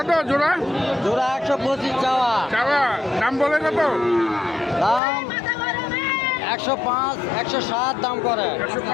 জোড়া? জোড়া 125 চাওয়া। দাম বলে কত? দাম 105, 107 দাম করে।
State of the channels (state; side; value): drops out; right; at 5.0 s